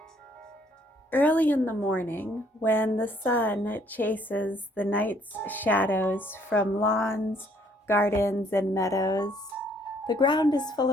Early in the morning, when the sun chases the night's shadows from lawns, gardens, and meadows, the ground is full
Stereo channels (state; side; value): normal; both; correlation 0.64